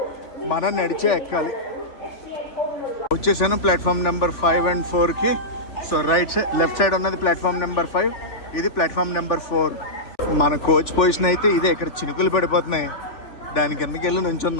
మనం నడిచే ఎక్కాలి. వచ్చేసాను ప్లాట్ఫామ్ నెంబర్ 5 and 4కి. సో లెఫ్ట్ సైడ్ ఉన్నది ప్లాట్ఫామ్ నెంబర్ 5, ఇది ప్లాట్ఫామ్ నెంబర్ 4. మన కోచ్ పొజిషన్ అయితే ఇదే. ఇక్కడ చినుకులు పడిపోతున్నాయి, దాని కిందకి వెళ్ళి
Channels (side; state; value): right; late; 3.4 ms